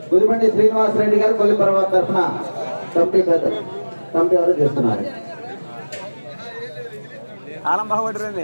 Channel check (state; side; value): inverted; both; correlation -1.00